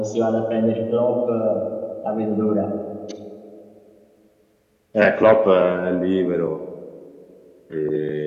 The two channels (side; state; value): both; identical; correlation 1.00